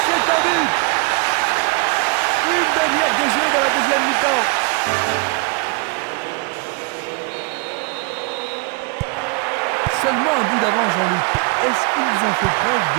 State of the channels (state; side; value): quieter; left; 30.5 dB